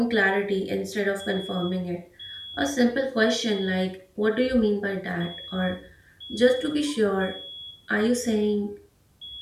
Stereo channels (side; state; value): both; identical; correlation 1.00